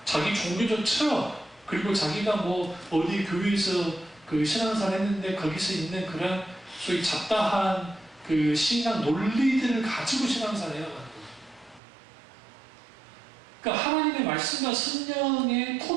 자기 종교적 철학, 그리고 자기가 어디 교회에서 그 신앙생활 했는데 거기서 있는 그런 소위 잡다한 그 신앙 논리들을 가지고 신앙생활을 해나가는 거예요. 그러니까 하나님의 말씀과 성령의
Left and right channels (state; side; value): drops out; left; at 11.8 s